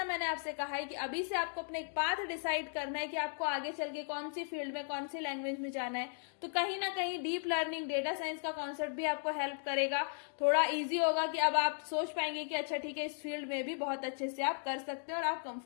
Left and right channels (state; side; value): silent; right; digital silence